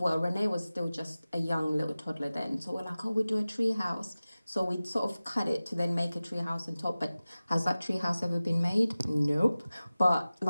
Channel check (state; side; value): inverted; both; correlation -0.97